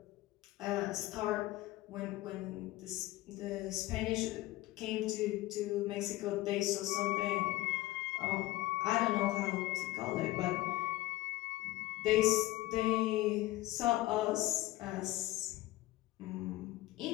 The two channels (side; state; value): right; quieter; 17.6 dB